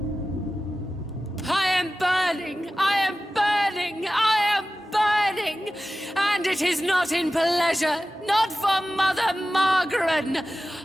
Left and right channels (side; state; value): both; normal; correlation 0.95